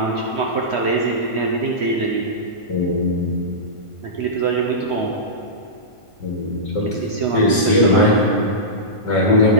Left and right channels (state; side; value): late; right; 1.5 ms